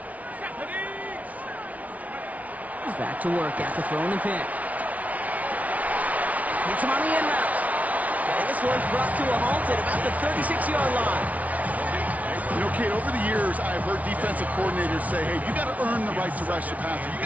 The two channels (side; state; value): left; late; 0.070 ms